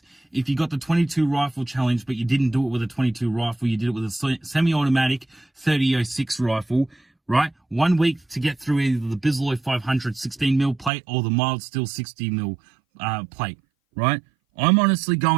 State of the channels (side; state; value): left; drops out; at 10.9 s